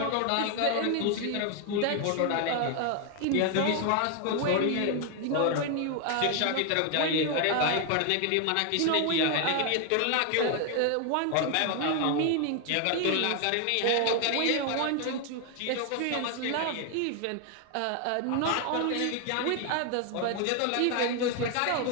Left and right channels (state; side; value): different; both; correlation 0.00